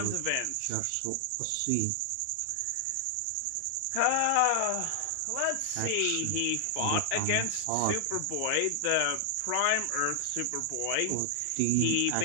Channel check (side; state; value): both; different; correlation 0.00